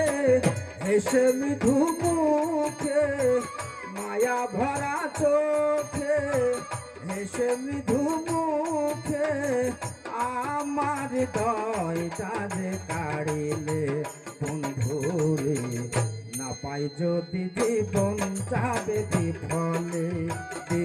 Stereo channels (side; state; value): both; identical; correlation 1.00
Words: এসে মৃদু মুখে, মায়া ভরা চোখে এসে মৃদু মুখে, আমার হৃদয়টা যে কাড়িলে বন্ধুরে, না পাই যদি জীবন যাবে বিফলে